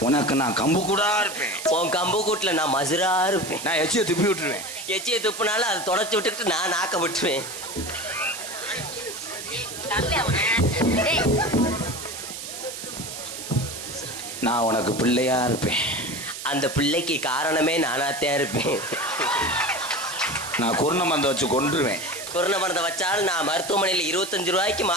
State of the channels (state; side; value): noise; right; hiss, 9 dB below the sound